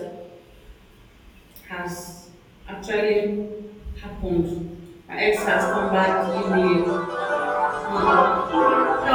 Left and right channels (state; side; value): identical; both; correlation 1.00